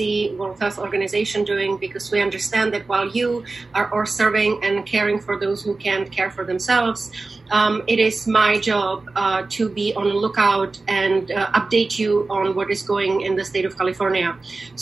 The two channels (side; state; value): left; quieter; 3.6 dB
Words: World Health Organization doing, because we understand that while you are all serving and caring for those who can't care for themselves, it is my job to be on the lookout and update you on what is going in the state of California.